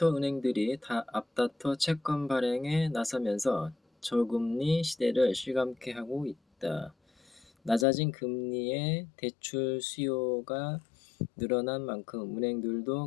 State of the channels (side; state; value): right; drops out; at 7.9 s